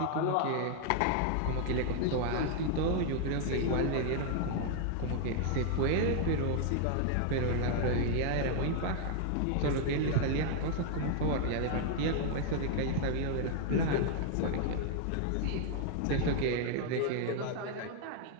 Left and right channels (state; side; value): different; both; correlation 0.00